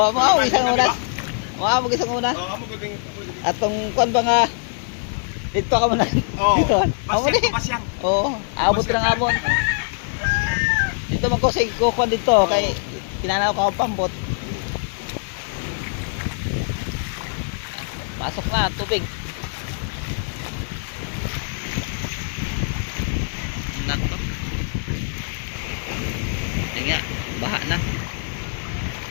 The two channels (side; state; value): right; silent; 63 dB below the other